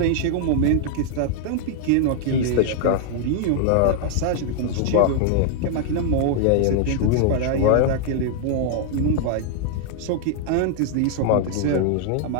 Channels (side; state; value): both; different; correlation 0.00